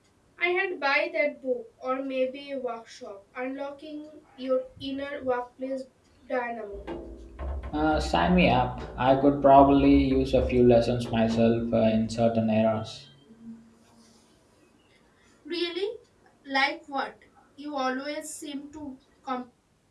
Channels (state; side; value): identical; both; correlation 1.00